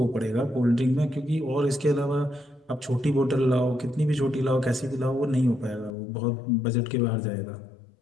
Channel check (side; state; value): right; drops out; at 6.0 s